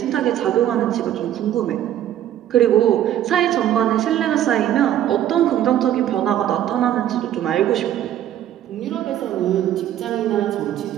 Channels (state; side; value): quieter; left; 11.5 dB